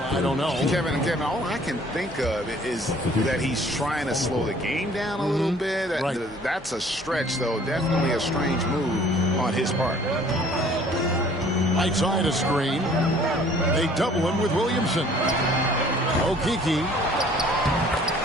don't know. Kevin, all I can think of is that he's trying to slow the game down a little bit. Right. That's a stretch, though. Definitely a strange move on his part. Right side a screen. They double him with Williamson. Okeke.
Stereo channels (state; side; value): normal; both; correlation 0.55